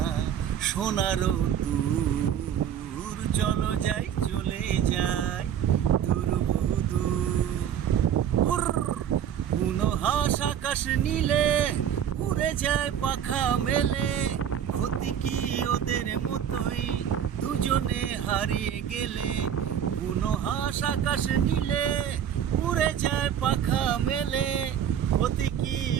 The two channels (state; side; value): quieter; left; 9.1 dB